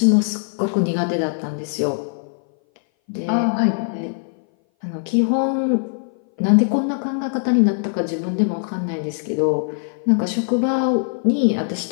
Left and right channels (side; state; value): right; silent; 59 dB below the other